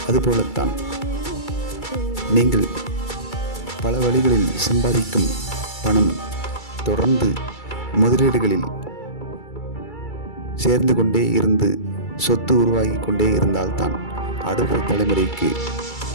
அதுபோலத்தான் நீங்கள் பல வழிகளில் சம்பாதிக்கும் பணம் தொடர்ந்து முதலீடுகளில் சேர்ந்து கொண்டே இருந்து சொத்து உருவாகி கொண்டே இருந்தால்தான் அடுத்த தலைமுறைக்கு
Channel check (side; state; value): right; late; 2.3 ms